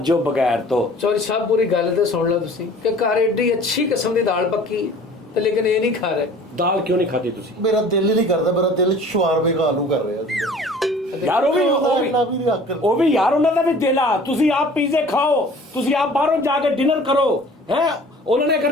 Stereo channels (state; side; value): normal; both; correlation 0.47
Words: ਬਗੈਰ ਤੋਂ। ਚੌਧਰੀ ਸਾਹਿਬ ਪੂਰੀ ਗੱਲ ਤੇ ਸੁਣ ਲਓ ਤੁਸੀਂ ਕਿ ਘਰ ਏਡੀ ਅੱਛੀ ਕਿਸਮ ਦੀ ਦਾਲ ਪੱਕੀ ਹੈ ਤੇ ਲੇਕਿਨ ਇਹ ਨਹੀਂ ਖਾ ਰਹੇ। ਦਾਲ ਕਿਉਂ ਨਹੀਂ ਖਾਦੀ ਤੁਸੀਂ? ਮੇਰਾ ਦਿਲ ਹੀ ਨਹੀਂ ਕਰਦਾ, ਮੇਰਾ ਦਿਲ ਸ਼ਵਾਰਮੇ ਆਲੂ ਕਰ ਰਿਹਾ ਸੀ। ਯਾਰ ਉਹ ਵੀ ਯਾਰ ਉਹਨਾਂ ਦਾ ਵੀ ਦਿਲ ਆ। ਤੁਸੀਂ ਆਪ ਪੀਜ਼ੇ ਖਾਓ, ਤੁਸੀਂ ਆਪ ਬਾਹਰੋਂ ਜਾ ਕੇ ਡਿਨਰ ਕਰੋ ਹੈ। ਉਹਨਾਂ ਨੇ